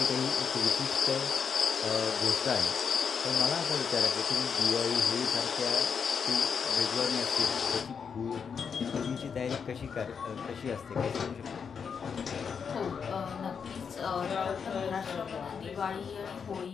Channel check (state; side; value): quieter; right; 6.5 dB